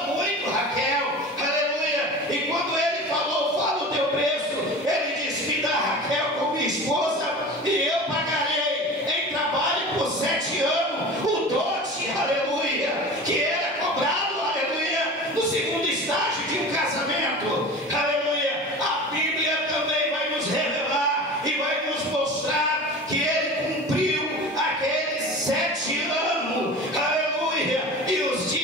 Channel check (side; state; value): both; normal; correlation 0.34